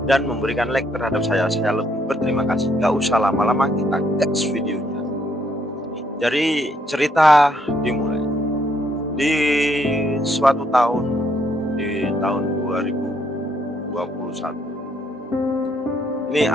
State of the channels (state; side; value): normal; both; correlation 0.71